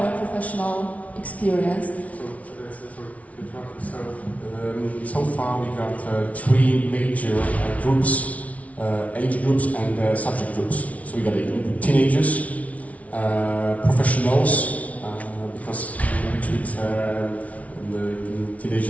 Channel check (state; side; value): late; right; 0.067 ms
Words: professional experience. So far we got 3 major groups, age groups and subject groups. So we got teenagers, professionals, because we treat the